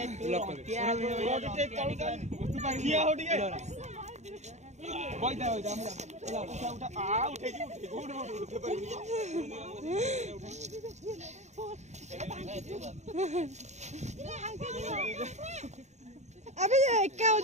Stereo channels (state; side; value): late; left; 0.33 ms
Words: लॉक कर किया हो ठीक है बोल जा हमरा उठा आ उठे की उठे गुड उठे पर अबे एका